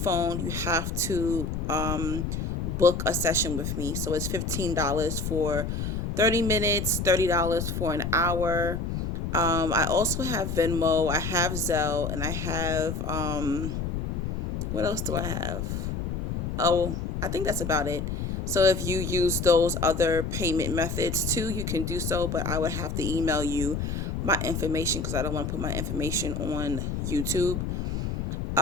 you have to book a session with me. So it's $15 for 30 minutes, $30 for an hour. I also have Venmo, I have Zelle, and I have, what else do I have? Oh, I think that's about it. So if you use those other payment methods too, you can do so, but I would have to email you my information because I don't want to put my information on YouTube.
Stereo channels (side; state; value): left; noise; rumble, 3 dB below the sound